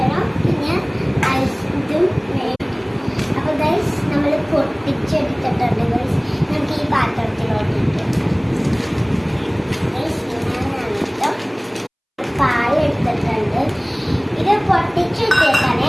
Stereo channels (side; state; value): both; identical; correlation 1.00